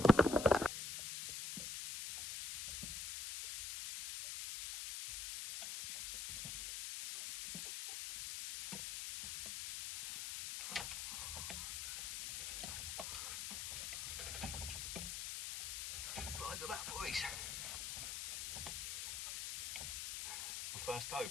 Size of that, boys. My first tope.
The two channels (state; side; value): noise; left; hiss, 4 dB below the sound